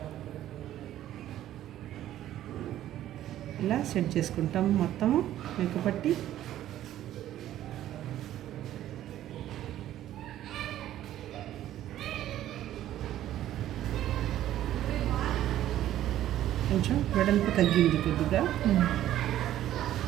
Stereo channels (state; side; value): quieter; left; 12.7 dB